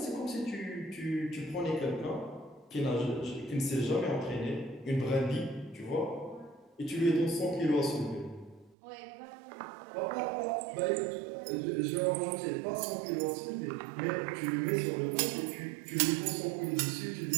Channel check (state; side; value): drops out; left; at 8.7 s